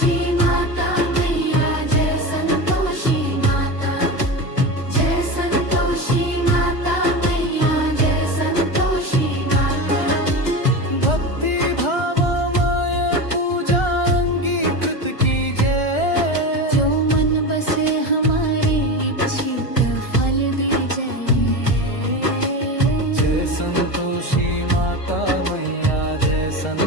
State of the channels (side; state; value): right; late; 1.4 ms